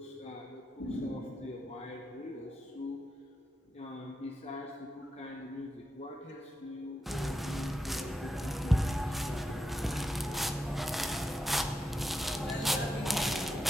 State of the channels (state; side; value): normal; both; correlation 0.86